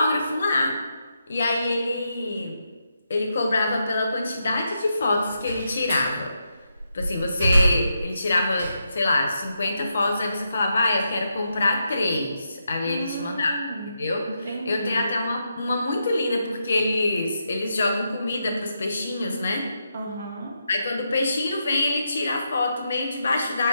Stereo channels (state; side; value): inverted; both; correlation -0.83